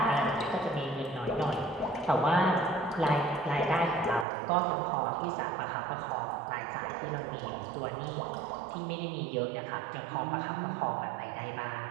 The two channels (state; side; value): drops out; left; at 4.2 s